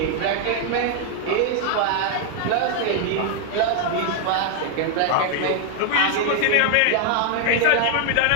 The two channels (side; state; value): both; different; correlation 0.00